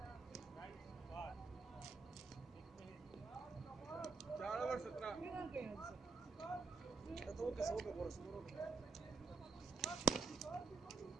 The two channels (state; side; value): quieter; left; 4.5 dB